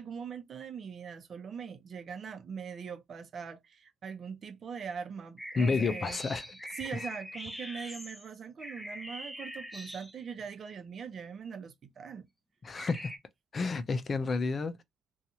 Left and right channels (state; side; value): normal; both; correlation 0.82